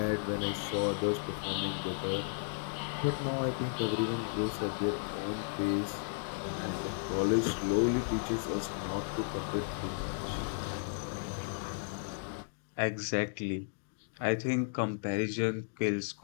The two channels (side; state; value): right; silent; digital silence